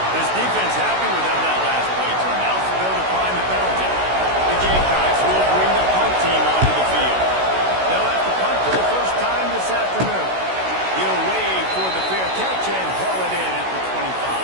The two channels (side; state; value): left; late; 16 ms